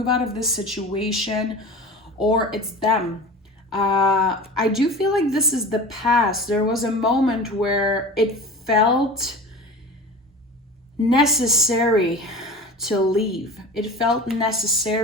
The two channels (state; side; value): normal; both; correlation 0.35